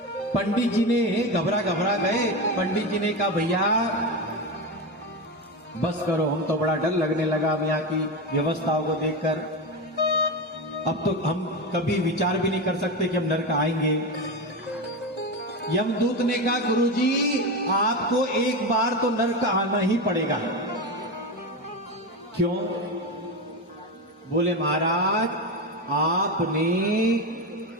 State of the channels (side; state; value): both; normal; correlation 0.17